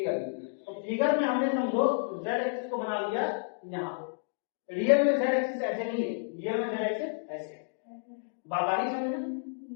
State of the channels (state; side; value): silent; right; digital silence